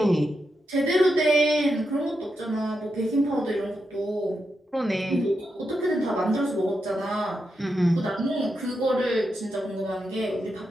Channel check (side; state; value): both; normal; correlation 0.86